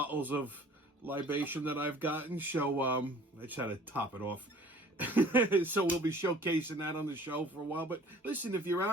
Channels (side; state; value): both; normal; correlation 0.50